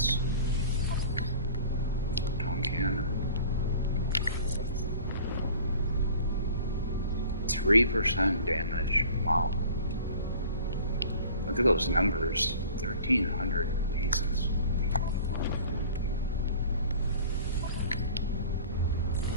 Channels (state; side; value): inverted; both; correlation -0.45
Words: Photon cannon. 3% damage. Wow. Look at those numbers. 1,300 pieces.